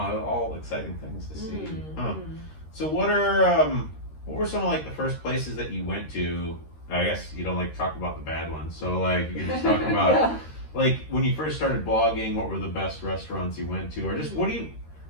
exciting things to see. Mm, Huh. mm. So what were some of like the first places that you went to? I guess you don't like to talk about the bad ones. So like you can just talk about Yeah. like when you first started blogging, what were the best restaurants you went to, or just what do you?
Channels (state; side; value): late; right; 13 ms